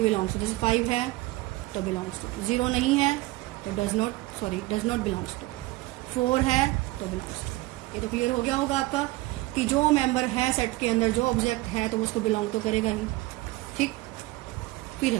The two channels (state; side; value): quieter; left; 19.9 dB